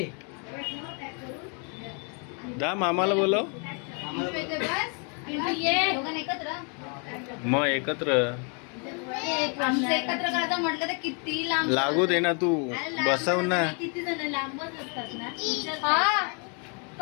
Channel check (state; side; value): quieter; right; 38.1 dB